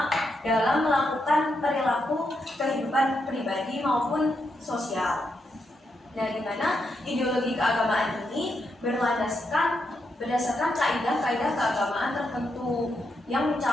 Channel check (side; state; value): both; normal; correlation 0.82